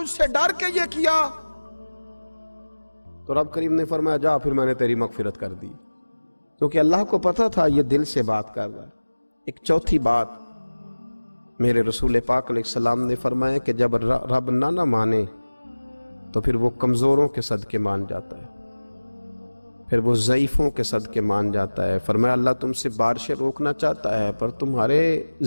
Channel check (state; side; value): inverted; both; correlation -1.00